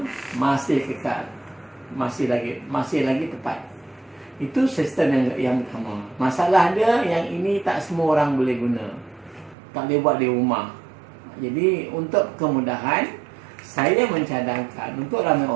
masih kekal. Masih lagi tepat. Itu sistem yang pertama. Masalah dia yang ini tak semua orang boleh guna. Tak boleh buat di rumah. Jadi untuk kemudahan, saya mencadangkan untuk ramai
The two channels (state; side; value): drops out; left; at 9.6 s